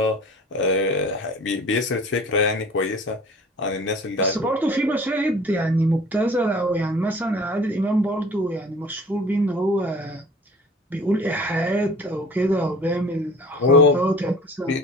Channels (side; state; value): both; normal; correlation 0.46